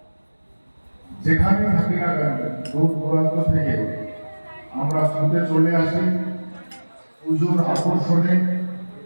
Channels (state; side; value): inverted; both; correlation -1.00